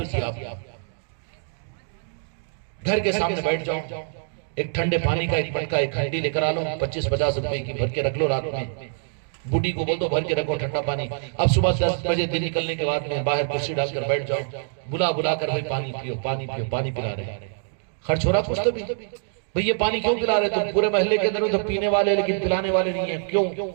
دیا. گھر کے سامنے بیٹھ جاؤ, ایک ٹھنڈے پانی کا ایک مٹکا ایک ہنڈی لے کر آ لو, 25-50 روپے کی بھر کے رکھ لو. رات میں بوڑھی کو بول دو بھر کے رکھو ٹھنڈا پانی. اب صبح 10 بجے دن نکلنے کے بعد میں باہر کرسی ڈال کر بیٹھ جاؤ, بلا بلا کر بھائی پانی پیو پانی پیو, پانی پلا رہے. خرچ ہو رہا کچھ تو بھی, بھئی یہ پانی کیوں پلا رہے؟ تم پورے محلے کے اندر تو پینے والے لیکن پلانے والے نہیں ہیں, کیوں؟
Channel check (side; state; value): left; silent; digital silence